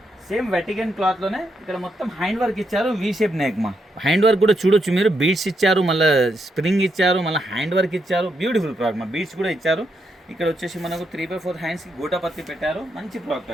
సేమ్ వెటికన్ క్లాత్లోనే ఇక్కడ మొత్తం హ్యాండ్ వర్క్ ఇచ్చారు, వీ షేప్ నెక్ మా. హ్యాండ్ వర్క్ కూడా చూడొచ్చు మీరు, బీడ్స్ ఇచ్చారు, మళ్ళీ స్ప్రింగ్ ఇచ్చారు, మళ్ళీ హ్యాండ్ వర్క్ ఇచ్చారు, బ్యూటిఫుల్ ప్రోడక్ట్ మా. బీడ్స్ కూడా ఇచ్చారు. ఇక్కడ వచ్చేసి మనకు 3/4 హ్యాండ్స్కి గూటపత్తి పెట్టారు, మంచి ప్రోడక్ట్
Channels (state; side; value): normal; both; correlation 0.80